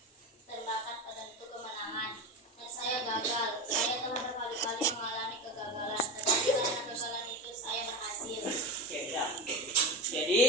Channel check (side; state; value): both; normal; correlation 0.23